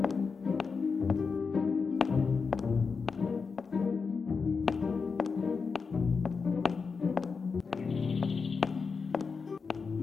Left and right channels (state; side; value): quieter; right; 5.1 dB